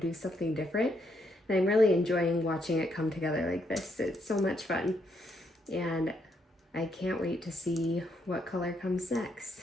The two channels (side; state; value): both; normal; correlation 0.75